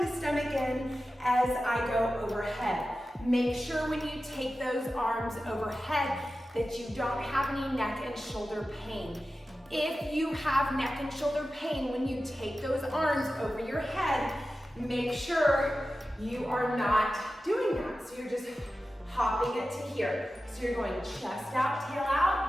stomach in as I go overhead. Make sure when you take those arms overhead that you don't have any neck and shoulder pain. If you have neck and shoulder pain when you take those arms over your head, make sure you are not doing that. So you're just hopping it to here. So you're going chest out, tail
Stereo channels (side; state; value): both; normal; correlation 0.94